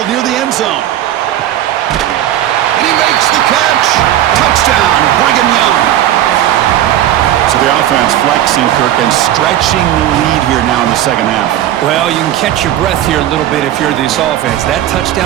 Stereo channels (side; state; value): left; quieter; 12.3 dB